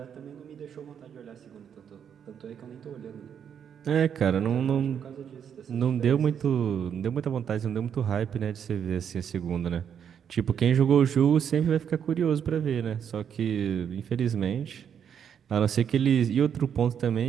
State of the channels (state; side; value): quieter; left; 8.2 dB